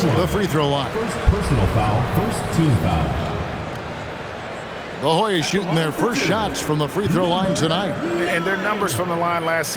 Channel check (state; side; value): identical; both; correlation 1.00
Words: the free throw line. First personal foul, first team foul. The Hoyas shooting their first shots from the free throw line tonight. And their numbers from the line last